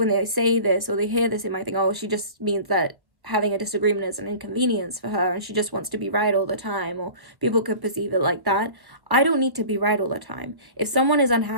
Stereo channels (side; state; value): left; late; 1.1 ms